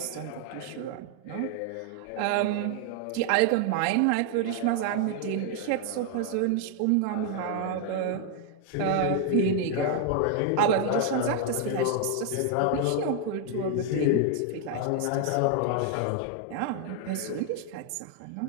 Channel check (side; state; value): both; different; correlation 0.00